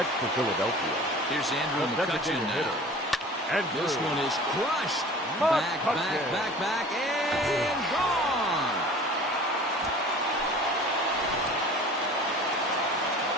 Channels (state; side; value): normal; both; correlation 0.43